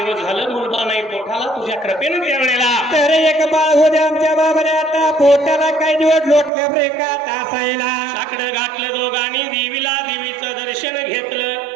झालं मुलगा नाही पोटाला तुझ्या कृपेनं त्यावेळेला तर एक बाळ होते आमच्या बाबाने आता पोटाला काही दिवस लोटलं ब्रेकात असायला साकडं घातलं दोघांनी देवीचं दर्शन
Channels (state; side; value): drops out; left; at 6.5 s